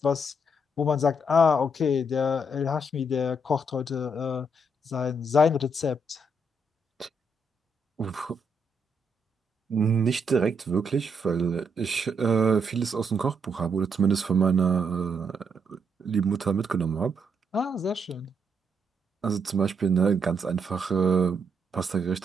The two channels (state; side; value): normal; both; correlation 0.76